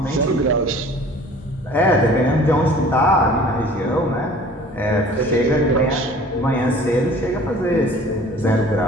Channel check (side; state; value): both; normal; correlation 0.48